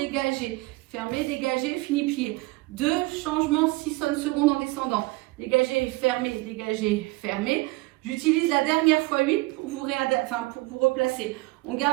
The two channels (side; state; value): left; quieter; 22.6 dB